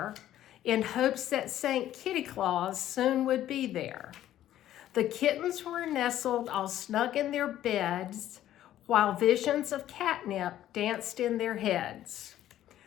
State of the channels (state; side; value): quieter; right; 12.5 dB